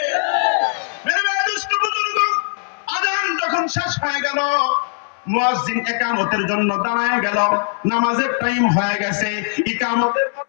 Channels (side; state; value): right; silent; 66 dB below the other